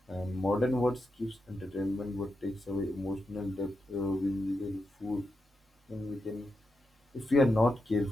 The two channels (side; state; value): both; normal; correlation 0.87